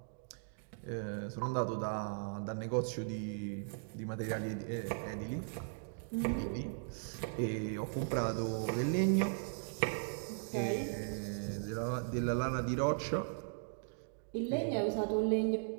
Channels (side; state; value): left; silent; digital silence